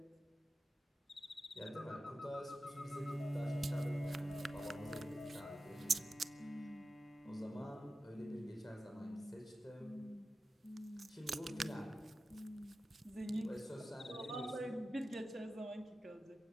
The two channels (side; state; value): both; normal; correlation 0.93